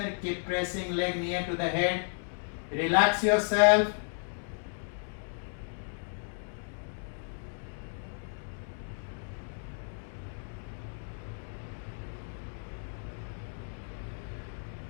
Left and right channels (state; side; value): silent; right; digital silence